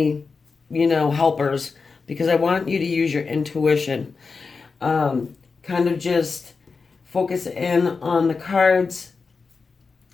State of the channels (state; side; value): quieter; right; 4.7 dB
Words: helpers because I want you to use your intuition. Kind of just focus in on the cards.